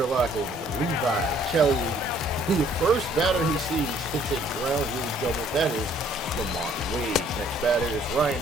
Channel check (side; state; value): both; normal; correlation 0.61